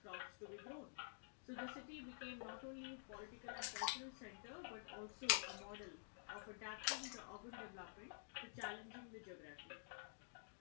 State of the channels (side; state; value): right; silent; digital silence